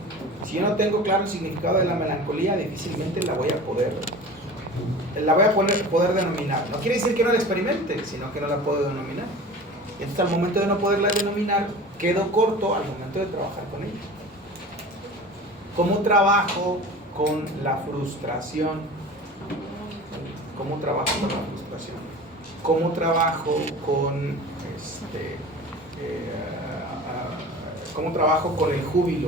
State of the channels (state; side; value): normal; both; correlation 0.37